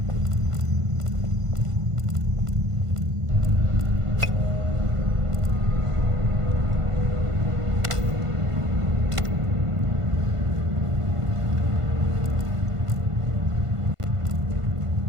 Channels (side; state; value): left; late; 1.5 ms